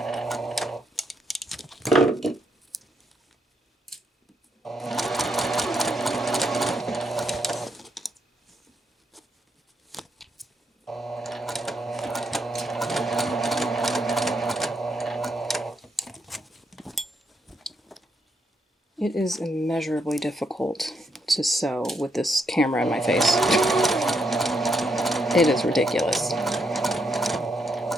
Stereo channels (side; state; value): both; normal; correlation 0.78